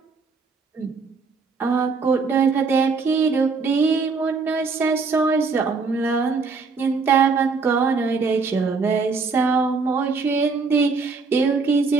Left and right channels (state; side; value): quieter; left; 4.6 dB